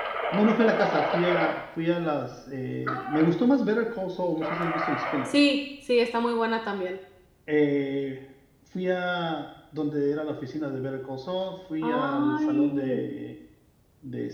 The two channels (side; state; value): both; identical; correlation 1.00